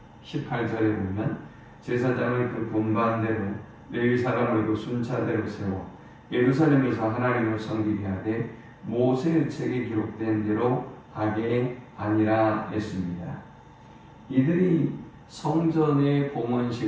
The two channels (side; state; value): both; identical; correlation 1.00